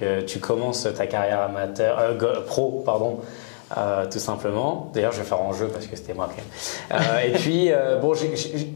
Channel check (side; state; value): right; silent; digital silence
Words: tu commences ta carrière pro, tout simplement. D'ailleurs, je vais faire en jeu parce que c'était moi qui. Et puis,